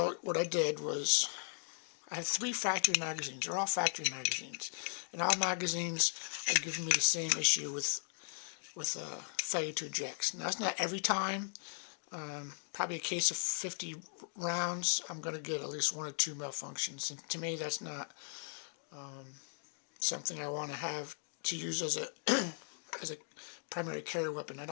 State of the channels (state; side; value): silent; right; 53 dB below the other